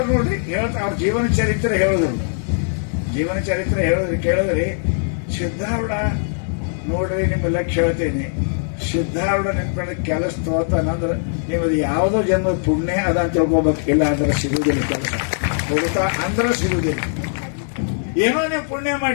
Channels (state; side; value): silent; right; digital silence